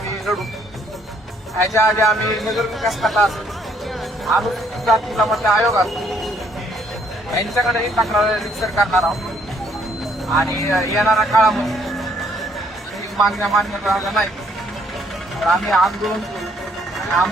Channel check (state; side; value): normal; both; correlation 0.66